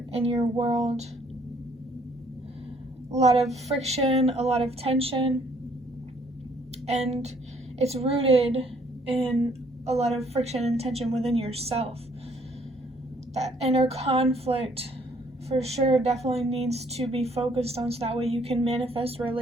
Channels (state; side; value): normal; both; correlation 0.64